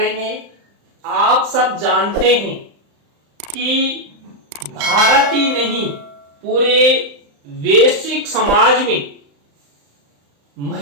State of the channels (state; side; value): late; left; 35 ms